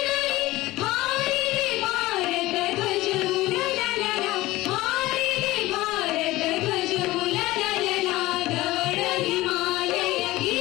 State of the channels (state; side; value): quieter; right; 18.4 dB